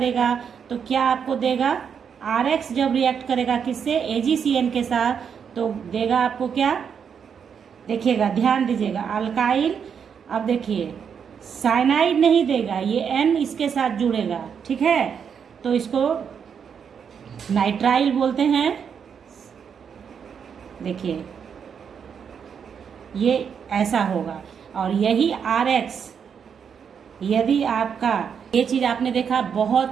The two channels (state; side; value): quieter; left; 7.1 dB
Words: तो क्या आपको देगा, RX जब रिएक्ट करेगा किससे, AgCN के साथ, तो देगा आपको क्या, देखिएगा ध्यान दीजिएगा, अल्काइल। अब देखिए साइनाइड नहीं देगा, ये N इसके साथ जुड़ेगा, ठीक है, तो इसको नाइट्राइल बोलते हैं। देखिए ये ऐसा होगा। और यही RX, यदि आपका ये चीज़ आपने देखा, बहुत